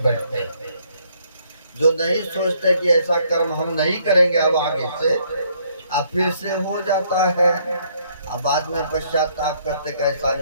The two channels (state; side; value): inverted; both; correlation -0.67